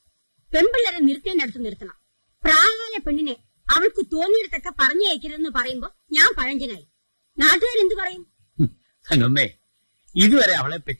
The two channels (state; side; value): inverted; both; correlation -1.00